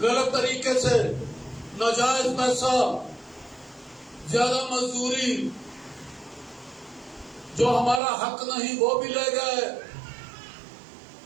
طریقے سے، ناجائز پیسہ، زیادہ مزدوری، جو ہمارا حق نہیں وہ بھی لے گئے،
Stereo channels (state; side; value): drops out; left; at 8.0 s